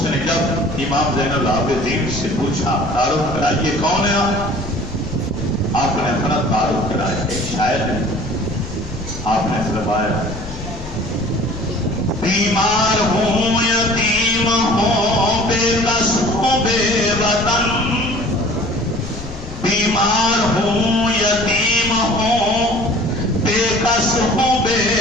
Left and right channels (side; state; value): left; noise; rumble, 12 dB below the sound